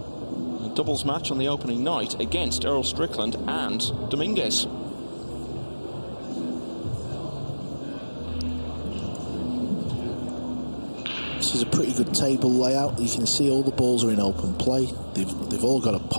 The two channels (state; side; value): inverted; both; correlation -1.00